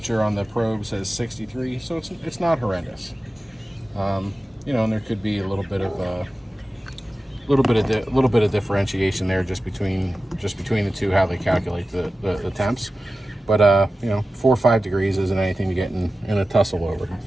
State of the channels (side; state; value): both; normal; correlation 0.94